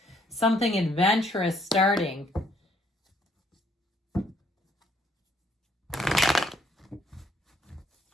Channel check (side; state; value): both; normal; correlation 0.67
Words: something adventurous starting.